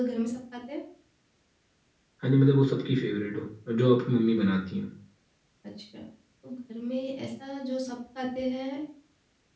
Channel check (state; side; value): identical; both; correlation 1.00